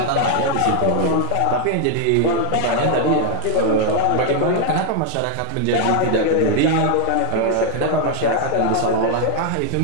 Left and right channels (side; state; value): both; different; correlation 0.00